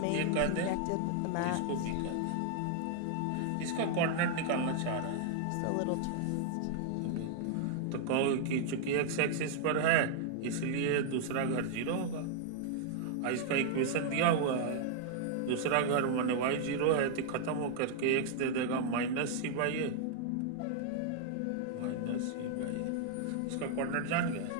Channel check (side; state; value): both; different; correlation 0.00